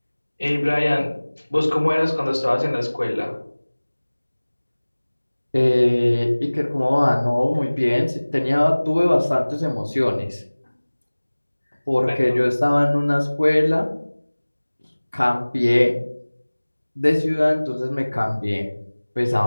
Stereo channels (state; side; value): inverted; both; correlation -1.00